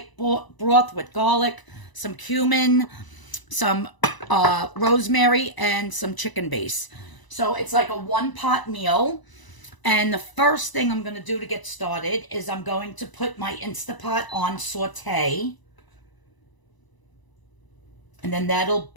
broth with garlic, some cumin, some rosemary, and some chicken base. So it's like a one-pot meal. And the first thing I'm going to do to get started is I'm going to put my Instapot on saute. And then that'll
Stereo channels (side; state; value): right; late; 1.0 ms